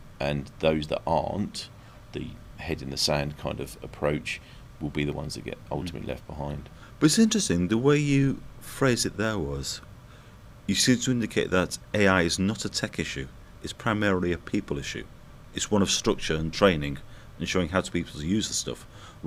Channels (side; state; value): both; identical; correlation 1.00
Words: and those that aren't, the head in the sand kind of approach, will be the ones that get ultimately left behind. But it's interesting, the way you phrased it there was, you seem to indicate that AI is not a tech issue, it's primarily a people issue. It's one of structure and training and showing how to people to use the stuff,